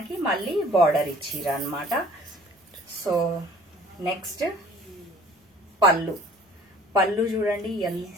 మళ్ళీ బార్డర్ ఇచ్చిరు అన్నమాట. సో నెక్స్ట్ పళ్ళు చూడండి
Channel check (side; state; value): both; normal; correlation 0.51